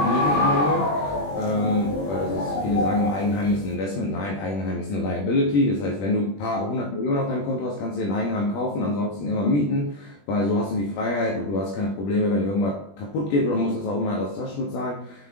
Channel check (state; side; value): late; right; 21 ms